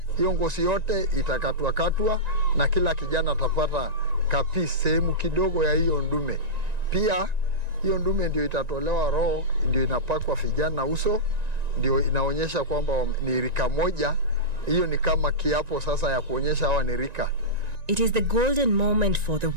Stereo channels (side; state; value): left; late; 1.9 ms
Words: Hiyo ngozi yote itakatwa na kila kijana atapata kapi sehemu kidogo ya hiyo ndume. Pia hiyo ndume ndio itatolewa roho, ndio inapakwa vijana uso, ndio inaonyesha kwamba ni rika moja. Hiyo ni kama kiapo sasa ya kuonyesha hawa ni rika. It is the golden moment for the